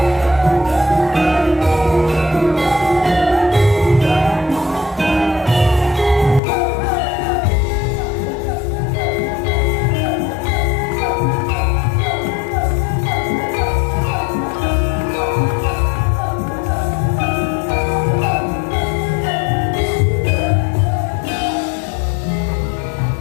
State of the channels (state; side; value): drops out; right; at 6.4 s